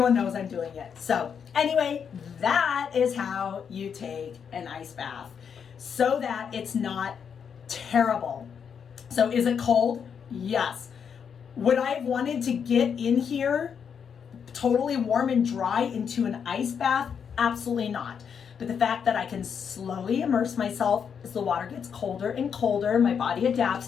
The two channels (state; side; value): quieter; right; 7.2 dB